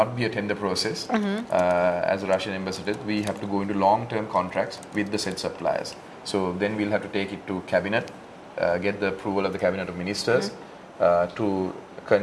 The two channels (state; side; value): identical; both; correlation 1.00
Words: be a tender process. As a Russian ambassador, we have to go into long-term contracts with the said suppliers. So then we'll have to take it to cabinet, get the approval of the cabinet of ministers to